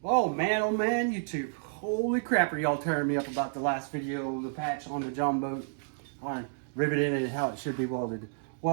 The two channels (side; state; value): left; silent; digital silence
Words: Oh man, YouTube. Holy crap, are y'all tearing me up about the last video, the patch on the Jon Boat, on riveting and how it should be welded.